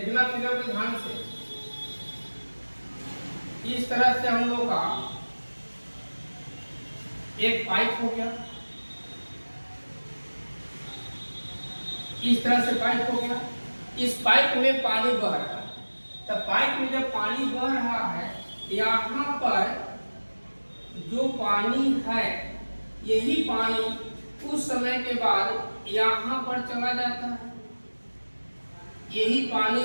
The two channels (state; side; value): inverted; both; correlation -1.00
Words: फिगर पर ध्यान से। इस तरह से हम लोग का एक पाइप हो गया, इस तरह से पाइप हो गया। इस पाइप में पानी बह रहा है। तो पाइप में जब पानी बह रहा है, यहाँ पर जो पानी है, यही पानी कुछ समय के बाद यहाँ पर चला जाता है। यही पानी